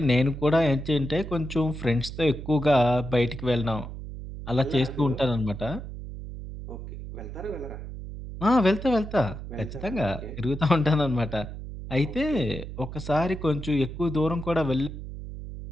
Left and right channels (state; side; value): noise; right; hum, 10 dB below the sound